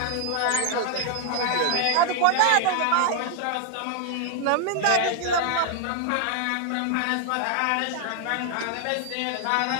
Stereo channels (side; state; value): both; different; correlation 0.00